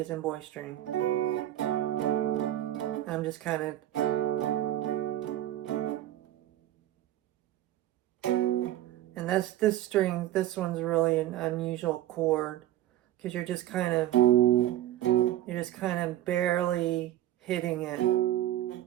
in boy string. I'm just kind of... And this string, this one's really an unusual chord, because you're just kind of barely hitting it.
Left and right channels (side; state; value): left; quieter; 13.4 dB